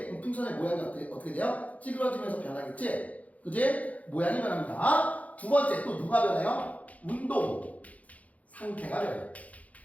그럼 풍선의 모양이 어떻게 돼요? 찌그러지면서 변하겠지? 그치? 모양이 변합니다. 두 번째, 또 누가 변해요? 운동 상태가 변해.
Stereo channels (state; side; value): late; right; 0.070 ms